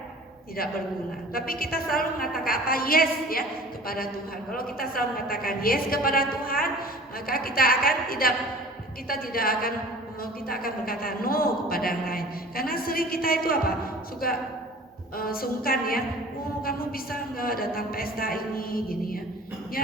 tidak berguna. Tapi kita selalu mengatakan apa? Yes, ya, kepada Tuhan. Kalau kita selalu mengatakan yes kepada Tuhan, maka kita akan berkata no kepada yang lain. Karena sering kita itu apa? Suka sungkan, ya. Oh, kamu bisa nggak datang pesta ini, gini, ya. Ya,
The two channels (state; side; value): normal; both; correlation 0.44